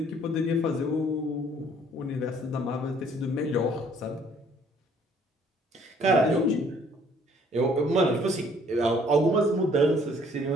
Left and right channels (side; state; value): both; normal; correlation 0.61